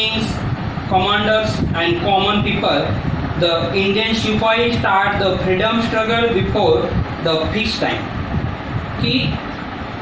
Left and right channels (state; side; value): identical; both; correlation 1.00